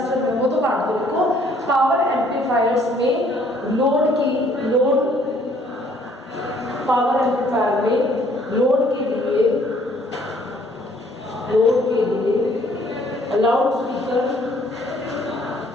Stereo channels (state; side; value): normal; both; correlation 0.61